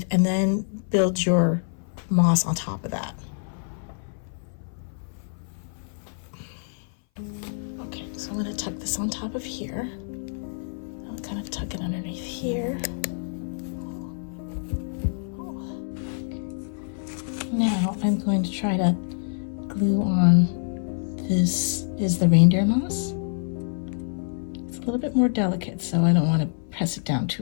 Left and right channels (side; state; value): right; silent; 58 dB below the other